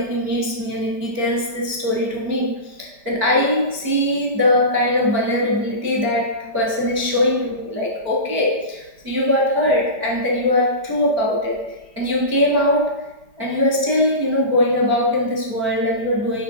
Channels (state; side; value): late; left; 5.0 ms